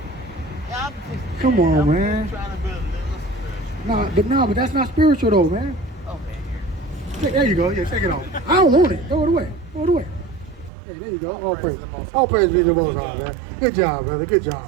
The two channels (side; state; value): left; drops out; at 10.7 s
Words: Yeah, Come on, man. I'm trying to build a little spiritual. But that's not spiritual though, man. Okay. There you go. Yeah, take it off. I don't want it. Throw it away. Throw it away. Hey, there you go. All praise. All praise be to the Most High, man. Good job, brother. Good